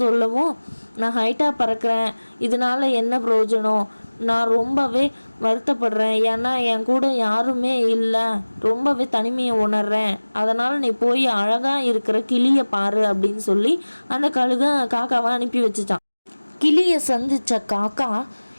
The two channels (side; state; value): both; inverted; correlation -1.00